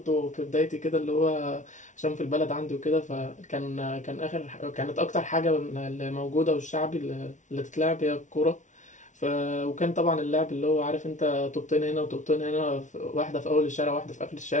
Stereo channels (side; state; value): right; late; 0.36 ms